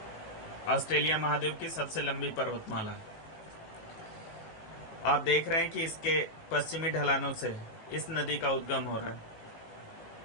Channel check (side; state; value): right; late; 18 ms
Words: ऑस्ट्रेलिया महाद्वीप की सबसे लंबी पर्वतमाला। आप देख रहे हैं कि इसके पश्चिमी ढलानों से इस नदी का उद्गम हो रहा है।